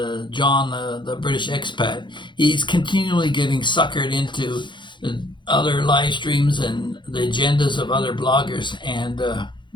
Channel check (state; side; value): late; right; 0.23 ms